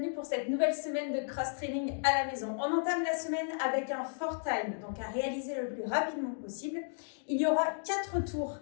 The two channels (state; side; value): silent; right; digital silence